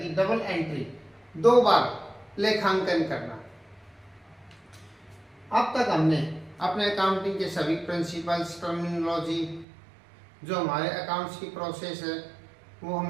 कि डबल एंट्री, दो बार लेखांकन करना। अब तक हमने अपने अकाउंटिंग के सभी प्रिंसिपल्स, टर्मिनोलॉजी, जो हमारे अकाउंट्स की प्रोसेस है वो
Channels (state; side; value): drops out; left; at 9.7 s